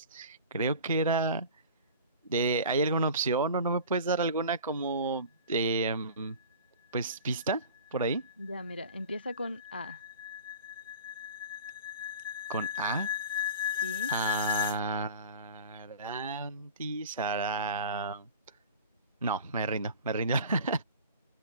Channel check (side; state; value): both; inverted; correlation -0.38